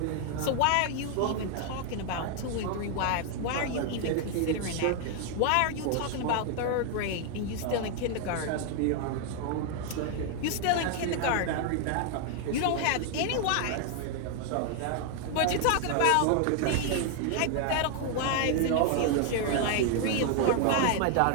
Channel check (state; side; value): different; both; correlation 0.00